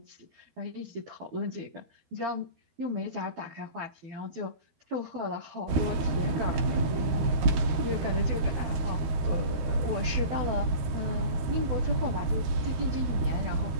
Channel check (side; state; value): left; late; 13 ms